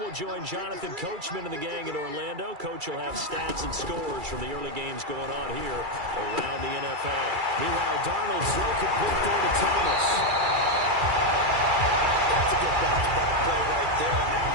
we'll join Jonathan Coachman and the gang in Orlando. Coach will have stats and scores from the early games going on here around the NFL. Meanwhile, Darnold's throw complete there to Thomas. That's a good bounce back play right there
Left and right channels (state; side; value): late; left; 2.3 ms